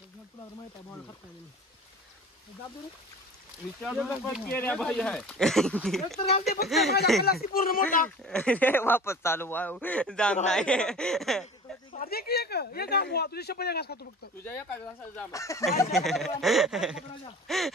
भाई आहे पूर्ण मोठा वापस चालू जाम नाही तुझ्या शपथ घास खातो फक्त तुझ्या एका घासाला जाम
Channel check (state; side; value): normal; both; correlation 0.40